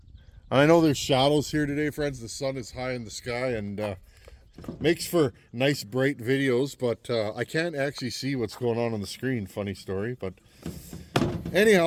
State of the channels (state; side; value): identical; both; correlation 1.00